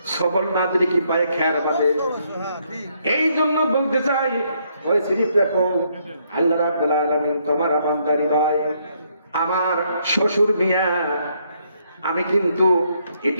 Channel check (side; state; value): both; inverted; correlation -0.72